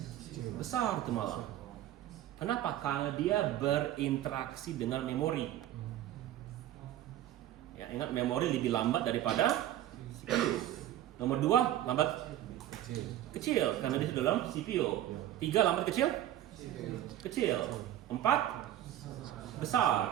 Besar itu malah. Kenapa? Karena dia berinteraksi dengan memori. Ya, ingat memori lebih lambat daripada CPU. Nomor 2 lambat kecil karena dia dalam CPU. 3 lambat kecil? Kecil. 4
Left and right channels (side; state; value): left; quieter; 12.8 dB